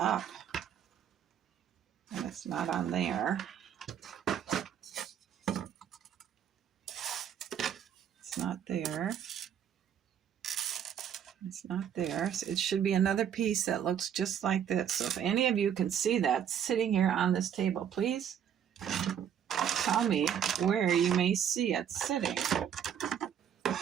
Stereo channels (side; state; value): left; quieter; 8.9 dB